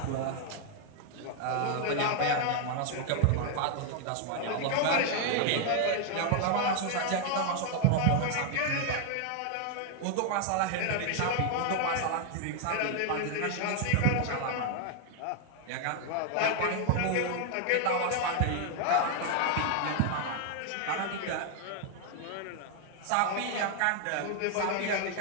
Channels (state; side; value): different; both; correlation 0.00